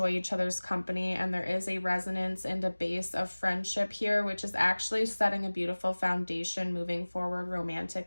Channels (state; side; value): inverted; both; correlation -1.00